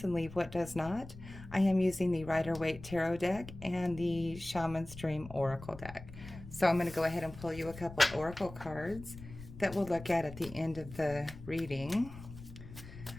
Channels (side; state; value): left; noise; rumble, 15 dB below the sound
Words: and leave what does not. I am using the Rider-Waite Tarot deck and the Shaman's Dream Oracle deck. So I'm going to go ahead and pull you a couple Oracle cards that we'll look at the end of the reading.